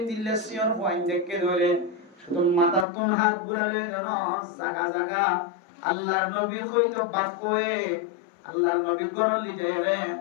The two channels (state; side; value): drops out; right; at 2.9 s